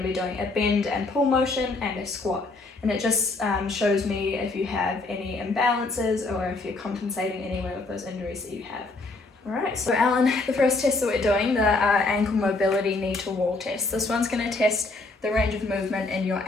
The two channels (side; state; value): right; quieter; 3.4 dB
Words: be doing a bend and pull motion and a squat, and it just shows me if you have any imbalances or if you're compensating anywhere with those injuries that you have. Alright, so Alan, the first test that we're doing, the ankle mobility knee to wall test. This one's going to test the range of movement in your